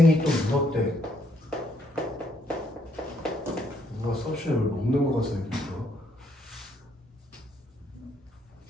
또 물었대. 누가 서션을 먹는 거 같아 이거.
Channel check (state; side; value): normal; both; correlation 0.71